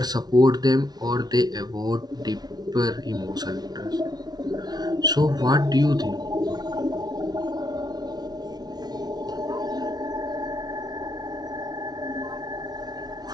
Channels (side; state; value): left; late; 0.19 ms